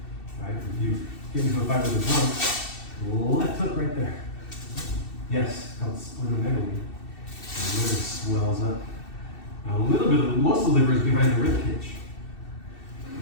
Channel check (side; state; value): right; late; 2.7 ms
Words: Right? If you get into a fight with a drunk, left hook right there. Yes, it's called splenomegaly. The liver swells up. Now, a little bit of most of the liver is behind the rib cage.